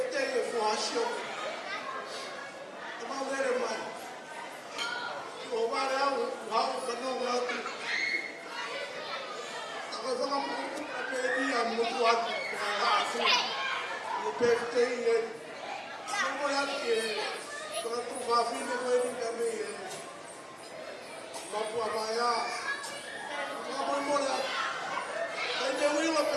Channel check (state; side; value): identical; both; correlation 1.00